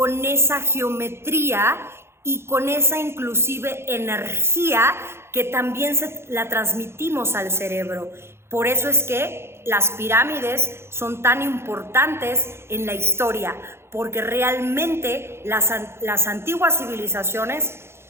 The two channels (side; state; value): left; late; 0.12 ms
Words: esa geometría y con esa inclusive energía que también la transmitimos al cerebro. Por eso es que las pirámides son tan importantes en la historia, porque realmente las antiguas civilizaciones